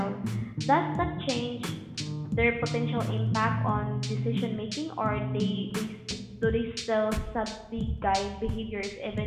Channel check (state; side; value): identical; both; correlation 1.00